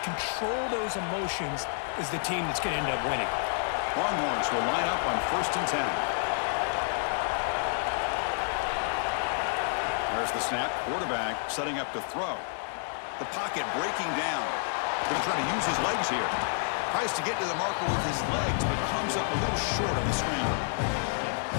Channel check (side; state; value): right; silent; digital silence